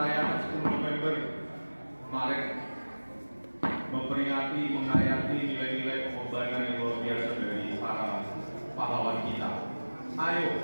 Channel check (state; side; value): inverted; both; correlation -1.00